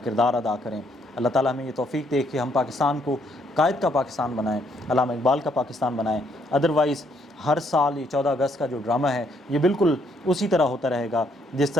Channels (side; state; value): both; normal; correlation 0.71